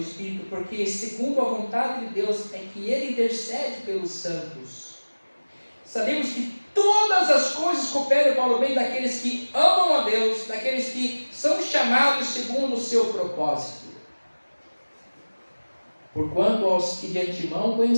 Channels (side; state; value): both; inverted; correlation -1.00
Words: Espírito, porque segundo a vontade de Deus é que Ele intercede pelos santos. Sabemos que todas as coisas cooperam para o bem daqueles que amam a Deus, daqueles que são chamados segundo o seu propósito. Porquanto aos que de antemão